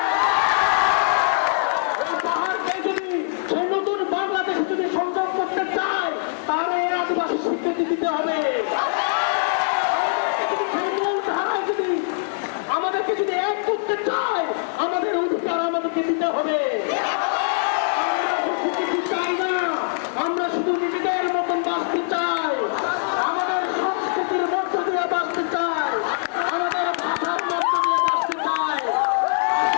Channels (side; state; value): right; silent; 59 dB below the other